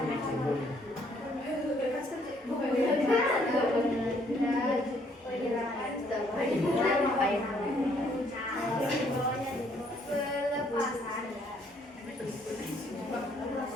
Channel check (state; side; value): normal; both; correlation 0.66